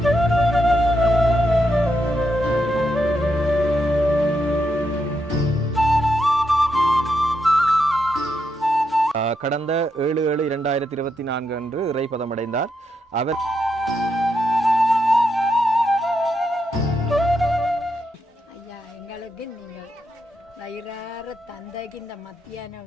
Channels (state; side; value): normal; both; correlation 0.82